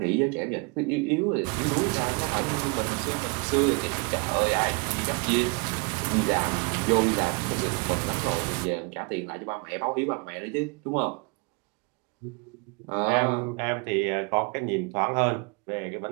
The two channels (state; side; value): quieter; left; 31.4 dB